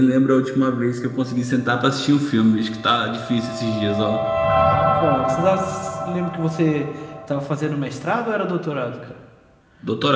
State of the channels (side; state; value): both; identical; correlation 1.00